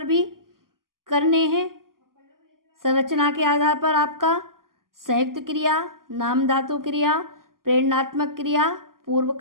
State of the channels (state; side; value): late; left; 0.91 ms